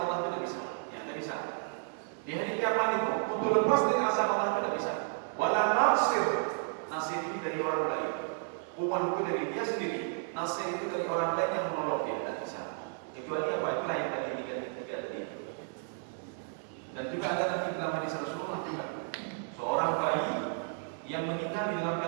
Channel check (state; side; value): silent; left; 56 dB below the other